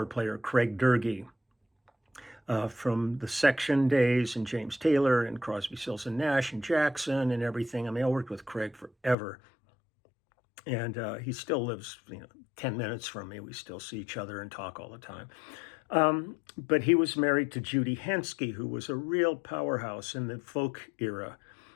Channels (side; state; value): right; drops out; at 9.2 s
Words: player, Craig Durgee, from the Section days, and James Taylor and Crosby, Stills and Nash and Jackson and everything. I mean, I worked with Craig forever. And he still lives, 10 minutes from me. We still see each other and talk all the time. But he was married to Judy Henske, who was a real powerhouse in the folk era.